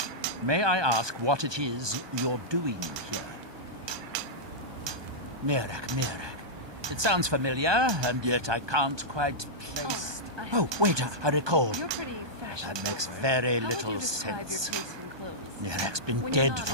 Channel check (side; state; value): left; late; 1.2 ms